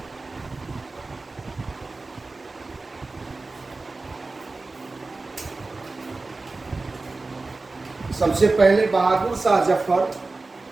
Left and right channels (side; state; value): left; quieter; 3.5 dB